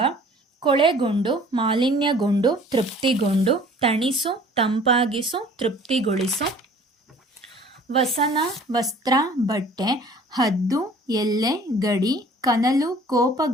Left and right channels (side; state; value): both; normal; correlation 0.51